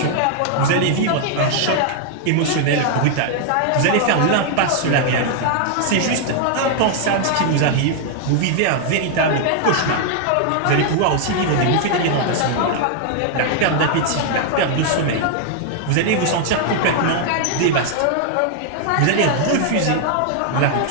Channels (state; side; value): different; both; correlation 0.00